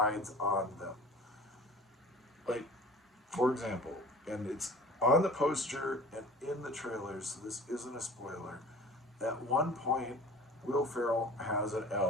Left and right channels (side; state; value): both; normal; correlation 0.42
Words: on them. Like, for example, and it's on the poster and in the trailers, so this isn't a spoiler, at one point, Will Ferrell has an